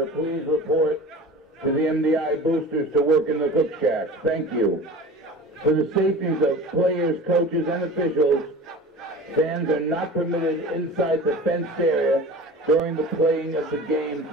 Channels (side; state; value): both; normal; correlation 0.37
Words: please report to the MDI boosters to work in the cook shack. Thank you. For the safeties of players, coaches, and officials, fans are not permitted inside the fenced area during the playing of the game